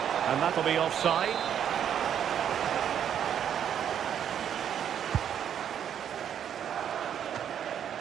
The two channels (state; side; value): quieter; left; 9.1 dB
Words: And that'll be offside.